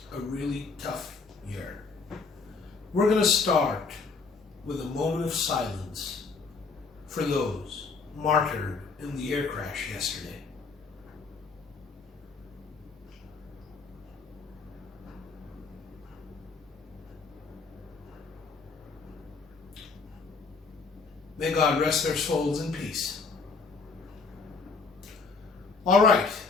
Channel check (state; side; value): quieter; right; 4.6 dB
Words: a really tough year. We're going to start with a moment of silence for those martyred in the air crash yesterday. May God rest their souls in peace. All right,